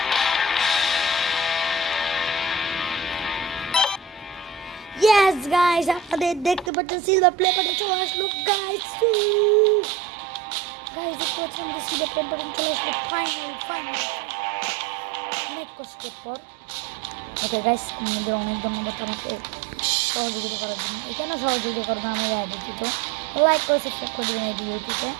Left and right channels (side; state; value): left; drops out; at 6.7 s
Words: yes guys আপনাদের দেখতে পাচ্ছেন সিলভার প্লে বাটন চলে আসলো guys দেখতে পাচ্ছেন সিলভার প্লে বাটন চলে আসলো ফাইনালি অনেক কষ্টের পর ওকে গাইস আমাদের অনেক ধন্যবাদ আপনাকে সহযোগিতা করার জন্য এখানে সহযোগিতা করবেন আমরা দিতে লাইক করে সাবস্ক্রাইব করে দিন এই ভিডিওটিতে